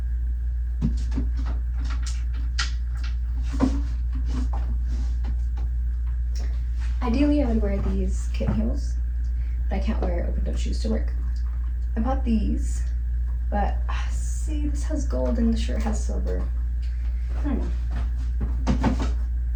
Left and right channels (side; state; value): both; identical; correlation 1.00